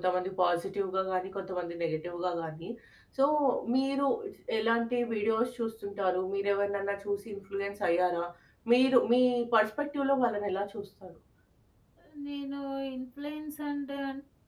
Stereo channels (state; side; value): identical; both; correlation 1.00